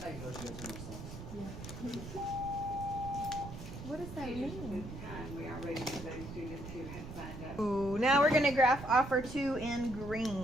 how you No. know she got too much sauce. What does that mean? We are ready for those students who have signed up. Ooh, now we're going to graph offer 2 in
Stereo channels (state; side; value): noise; right; rumble, 10 dB below the sound